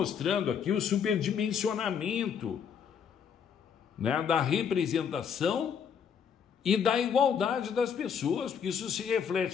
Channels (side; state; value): right; quieter; 7.4 dB